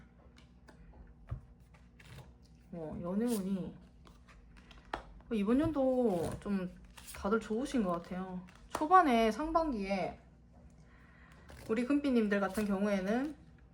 연애운이 이번 연도 좀 다들 좋으신 것 같아요. 초반에 상반기에 우리 금빛님들 같은 경우에는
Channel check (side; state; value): both; identical; correlation 1.00